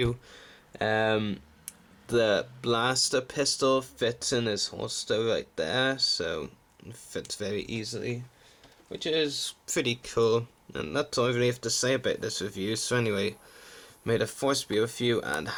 The blaster pistol fits in his holster right there, so it fits very easily, which is pretty cool. And that's all I really have to say about this review. So anyway, may the force be with you and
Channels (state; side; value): identical; both; correlation 1.00